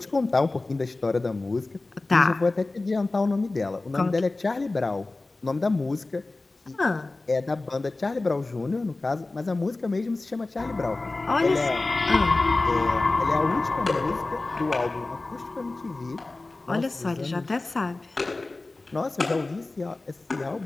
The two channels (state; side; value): quieter; right; 3.2 dB